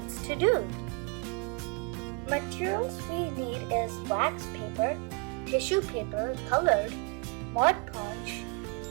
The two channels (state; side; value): quieter; left; 31.5 dB